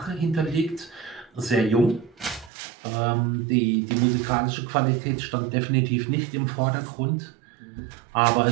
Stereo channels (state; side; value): drops out; left; at 2.5 s